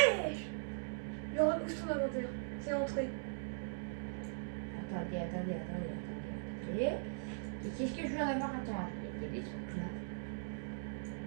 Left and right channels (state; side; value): silent; left; digital silence